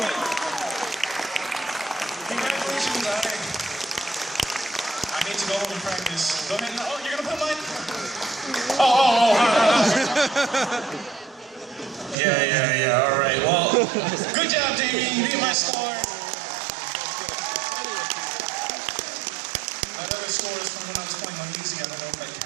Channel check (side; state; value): left; drops out; at 12.2 s